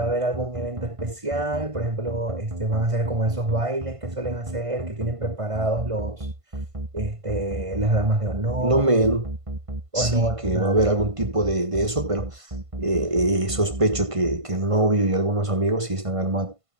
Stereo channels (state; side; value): late; left; 1.5 ms